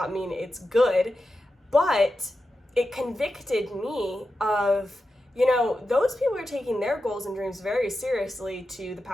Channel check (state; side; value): normal; both; correlation 0.90